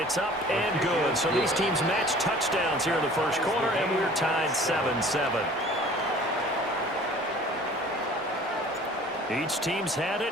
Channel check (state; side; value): normal; both; correlation 0.48